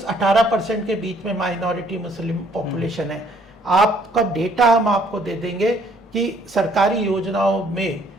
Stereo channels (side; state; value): both; normal; correlation 0.63